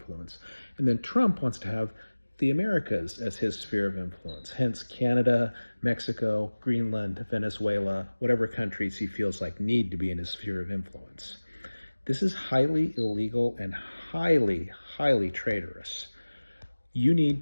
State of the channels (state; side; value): inverted; both; correlation -1.00